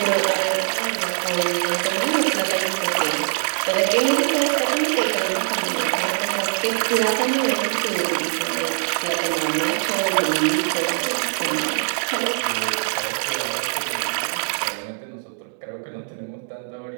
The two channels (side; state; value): left; silent; 64 dB below the other